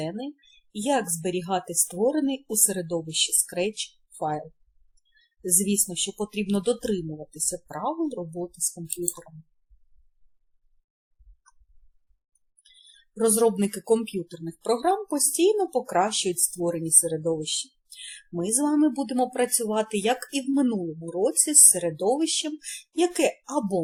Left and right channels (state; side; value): identical; both; correlation 1.00